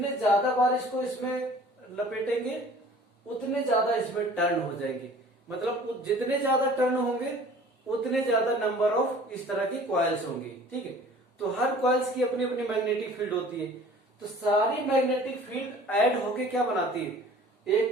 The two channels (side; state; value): both; normal; correlation 0.48